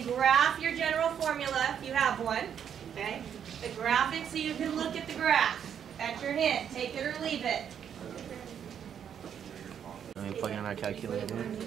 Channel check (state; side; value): quieter; left; 8.5 dB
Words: graph your general formula if you have one. Okay? The graph it so you can look at the graph. That's your hint. Take it or leave it. And we plug in our calculator,